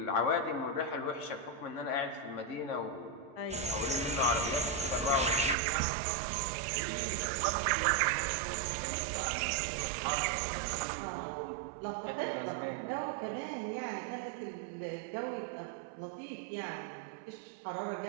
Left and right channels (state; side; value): drops out; left; at 5.6 s